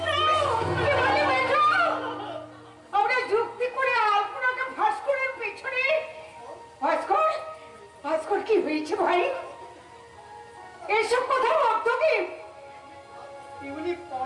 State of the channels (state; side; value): identical; both; correlation 1.00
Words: আমরা যুক্তি করে আলপনাকে ভাস্করের পিছনে? ভাস্কর, ভাস্কর কি হয়েছে ভাই? এসব কথা অর্থ কি? এগুলি